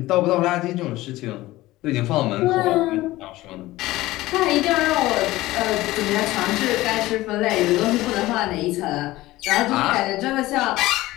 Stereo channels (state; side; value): quieter; right; 17.7 dB